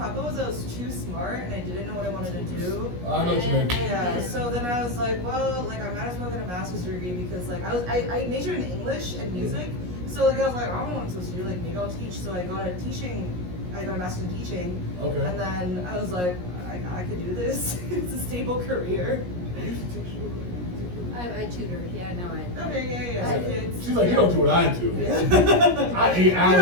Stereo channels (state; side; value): late; left; 17 ms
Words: was I was too smart and I didn't know what I wanted to do. I know what you mean. Yeah, so then I was like, well, like I might as well get a master's degree because like I majored in English and music. So like I was like, I don't know what I'm supposed to do, like maybe I'll teach. So I got a master's in teaching. Okay. And then I was like, I could do this. It's a stable career. You used to teach. I tutored, yeah, no, I. Okay, yeah. So kids. She's like, you don't do what I do. Yeah. I 8 You hours.